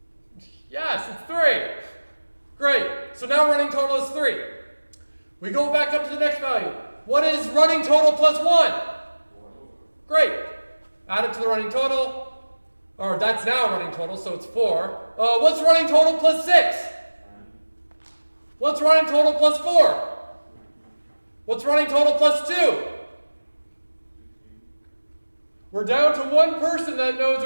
Yes, it's 3. Great. So now running total is 3. We go back up to the next value. What is running total plus 1? Great. Add it to the running total. Or that's now running total, so it's 4. What's running total plus 6? What's running total plus 4? What's running total plus 2? We're down to one person that knows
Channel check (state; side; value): inverted; both; correlation -1.00